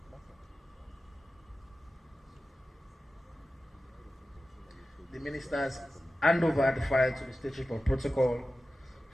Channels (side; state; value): both; normal; correlation 0.95